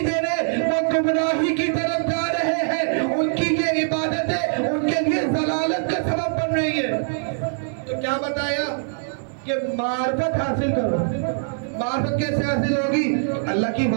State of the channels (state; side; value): silent; left; digital silence